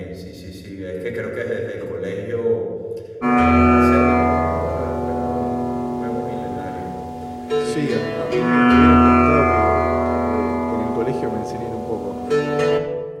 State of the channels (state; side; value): identical; both; correlation 1.00